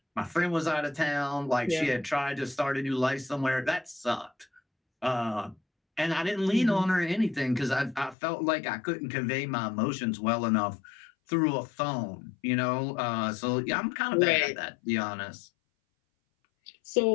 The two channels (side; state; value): right; drops out; at 8.2 s